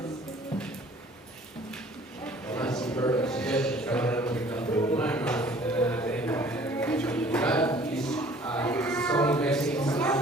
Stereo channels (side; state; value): both; normal; correlation 0.53